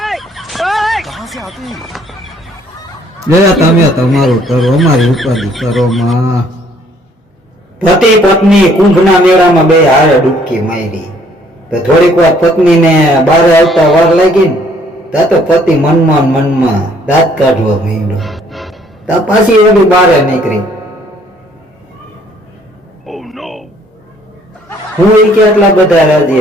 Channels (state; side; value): normal; both; correlation 0.62